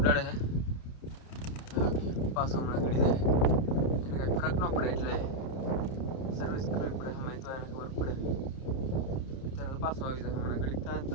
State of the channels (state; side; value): late; right; 30 ms